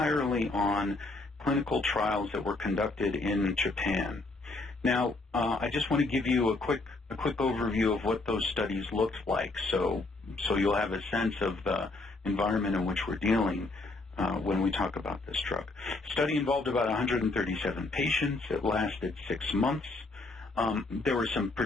on clinical trials that were conducted in Japan. Now, I just want to give you a quick overview of what those studies looked like, so you'll have a sense of the environment in which we're dealing when we talk about this drug. The study involved about 137 patients. It lasted 6 months. There were some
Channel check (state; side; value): quieter; right; 3.2 dB